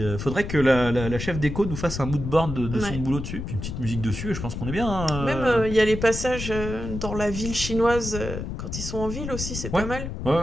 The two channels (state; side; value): noise; left; rumble, 6 dB below the sound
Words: faudrait que la chef déco nous fasse un mood board de son boulot dessus, puis une petite musique dessus, et je pense qu'on est bien. Hein. Même, il y a les passages dans la ville chinoise, quand ils sont en ville aussi, c'est pas mal.